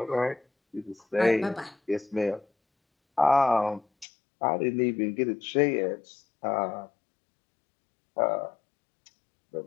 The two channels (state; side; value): drops out; right; at 4.0 s